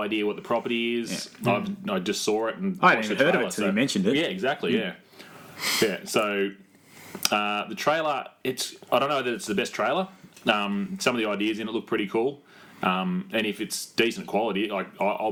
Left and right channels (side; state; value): both; identical; correlation 1.00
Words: idea what the property is. Yeah. I just saw it and I watched hadn't the heard trailer. of it until you mentioned it. Yeah, exactly. Yeah. So the trailer, I don't know that it's the best trailer. Some of the ideas in it look pretty cool. And if it's decent quality,